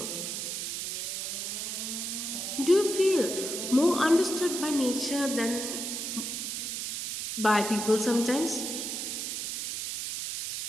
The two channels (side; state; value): right; noise; hiss, 3 dB below the sound